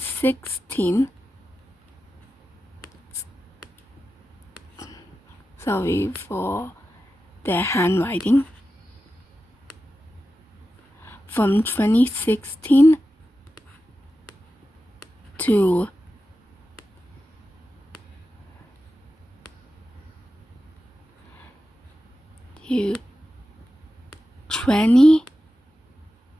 sorry for the handwriting, from 2016 to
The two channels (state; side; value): normal; both; correlation 0.92